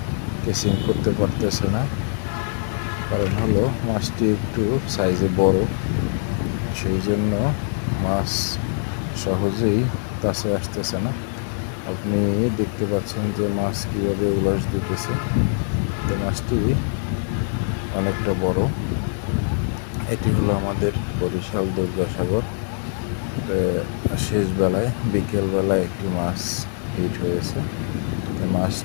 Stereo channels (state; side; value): silent; right; 63 dB below the other